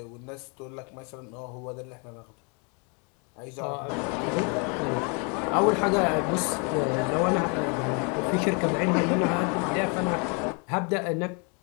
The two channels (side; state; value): right; quieter; 35.2 dB